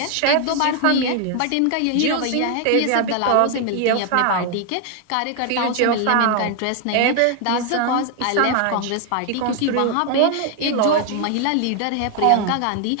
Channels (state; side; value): different; both; correlation 0.00